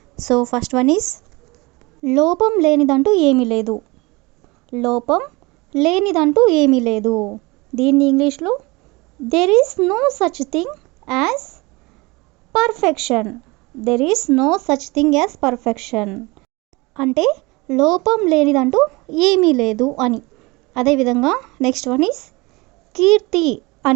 సో ఫస్ట్ వన్ ఈస్ లోపం లేనిదంటూ ఏమీ లేదు. లోపం లేనిదంటూ ఏమీ లేదు. దీన్ని ఇంగ్లీష్లో there is no such thing as perfection. There is no such thing as perfection అంటే లోపం లేనిదంటూ ఏమీ లేదు అని. అదేవిధంగా నెక్స్ట్ వన్ ఈస్ కీర్తి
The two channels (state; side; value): quieter; left; 24.4 dB